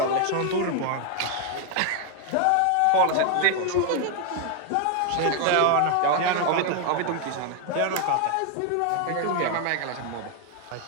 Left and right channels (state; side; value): different; both; correlation 0.01